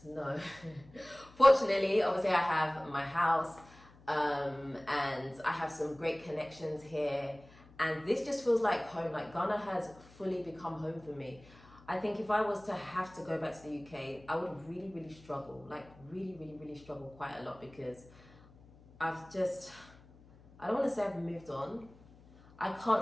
No. Fortunately, obviously I have my house, and I have some great connections here, and this just feels like home. Like Ghana has fully become home for me. I think if I was to have to go back to the UK, I would really, really struggle. Like really, really, really struggle quite a lot, because I don't want to say I've moved on. I can't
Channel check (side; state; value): left; noise; hum, 24 dB below the sound